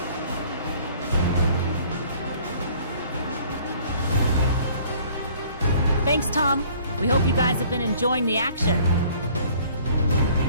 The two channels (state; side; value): inverted; both; correlation -0.55